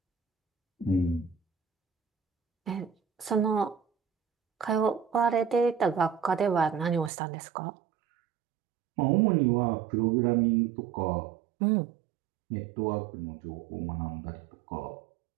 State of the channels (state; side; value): drops out; left; at 7.1 s